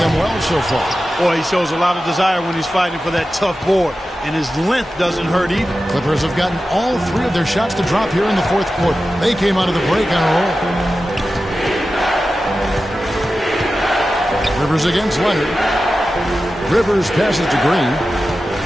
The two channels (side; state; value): both; normal; correlation 0.93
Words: well so far. Boy, he shows a lot of desire when he's fighting for that tough board, and his length doesn't hurt either. Clippers have gotten all 3 of their shots to drop here in the fourth quarter. They came out of the break on a roll. Rivers against Leonard. Rivers passes to Green